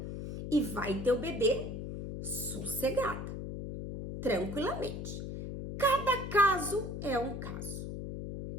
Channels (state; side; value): noise; left; hum, 6 dB below the sound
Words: e vai ter o bebê sossegada, tranquilamente. Cada caso é um caso.